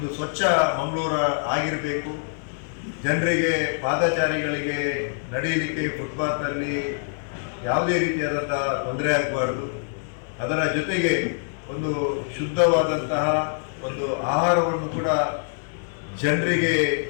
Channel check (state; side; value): silent; right; digital silence